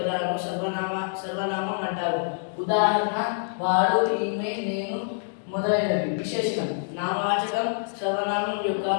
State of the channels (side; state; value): right; silent; digital silence